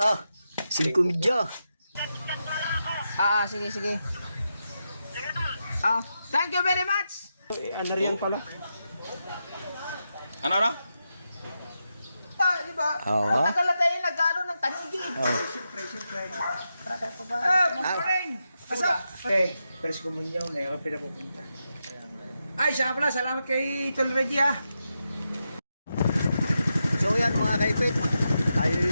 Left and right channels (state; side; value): inverted; both; correlation -0.87